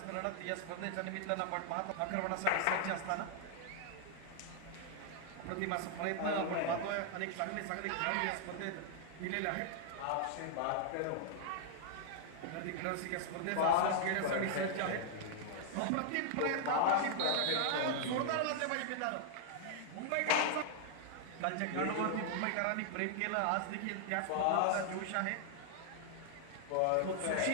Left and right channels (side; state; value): both; different; correlation -0.01